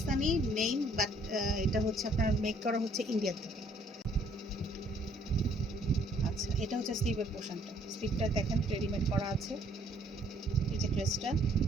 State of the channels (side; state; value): both; normal; correlation 0.63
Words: নেম, বাট এটা হচ্ছে আপনার মেক করা হচ্ছে ইন্ডিয়া থেকে। আচ্ছা, এটা হচ্ছে স্লিভের পোর্শনটা। স্লিভটা দেখেন রেডিমেড করা আছে। এই যে ড্রেসটা,